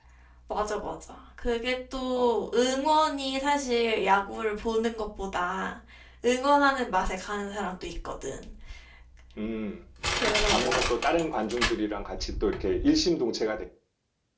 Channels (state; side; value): identical; both; correlation 1.00